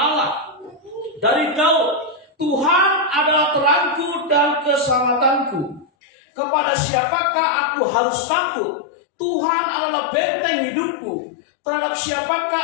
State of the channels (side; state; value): right; drops out; at 5.9 s